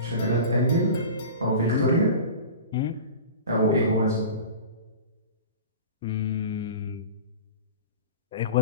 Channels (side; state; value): both; inverted; correlation -0.34